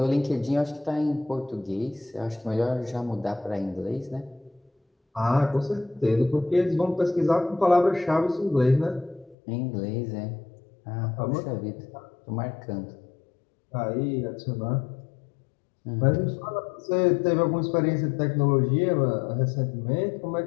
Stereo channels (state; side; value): drops out; right; at 9.3 s